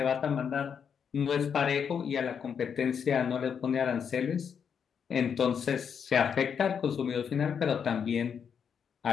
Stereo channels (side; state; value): right; quieter; 7.2 dB